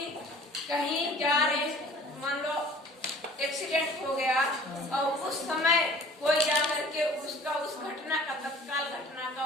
कहीं जा रहे, मान लो एक्सीडेंट हो गया और उस समय कोई जाकर के उसका उस घटना का, तत्काल घटना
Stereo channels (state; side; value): normal; both; correlation 0.48